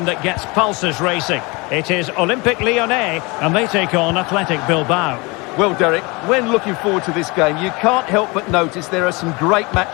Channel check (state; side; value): quieter; right; 26.5 dB